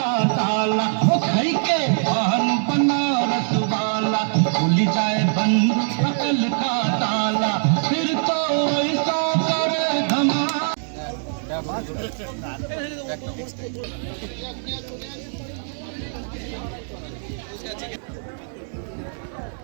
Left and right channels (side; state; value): left; silent; digital silence